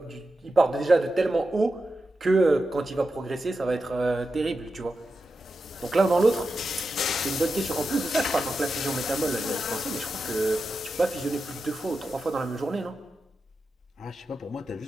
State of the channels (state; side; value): normal; both; correlation 0.90